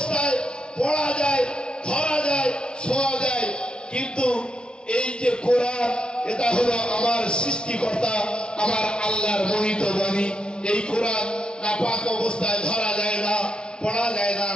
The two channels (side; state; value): right; late; 0.055 ms